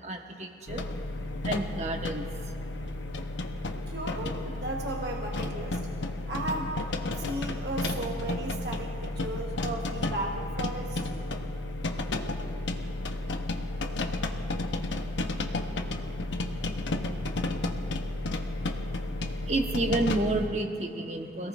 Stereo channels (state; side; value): normal; both; correlation 0.54